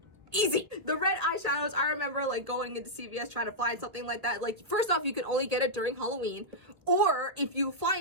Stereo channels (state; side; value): late; left; 1.5 ms